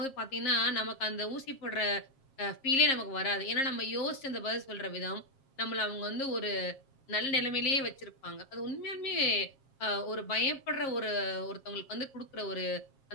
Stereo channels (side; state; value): right; late; 7.4 ms